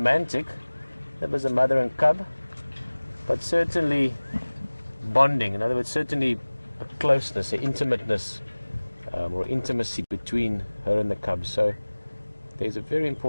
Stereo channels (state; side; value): inverted; both; correlation -1.00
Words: That was a mother and cub, but certainly bonding. In other words, certainly a closeness, an intimateness, or intimacy between her and the cub. So there's a very